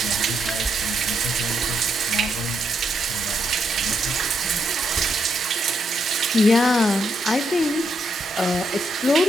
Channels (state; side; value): normal; both; correlation 0.79